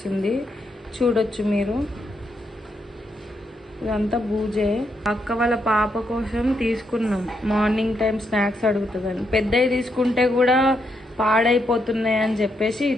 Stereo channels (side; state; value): both; normal; correlation 0.79